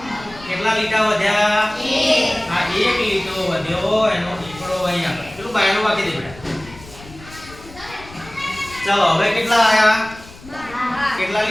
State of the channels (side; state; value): left; noise; rumble, 19 dB below the sound